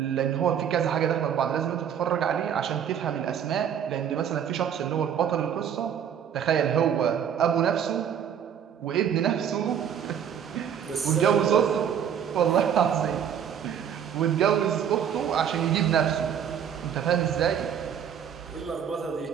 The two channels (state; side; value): quieter; left; 8.7 dB